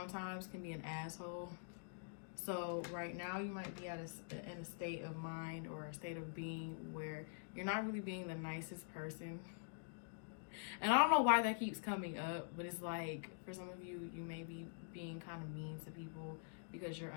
can be an asshole. So right now you might be in a state of mind or a state of being where you're not really being the nicest person. And I don't know why that keeps coming up, but it's like, for some of you, you may be being kind of mean to people because you're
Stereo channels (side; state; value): right; silent; digital silence